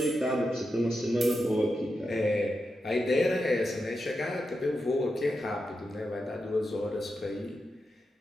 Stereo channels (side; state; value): both; normal; correlation 0.88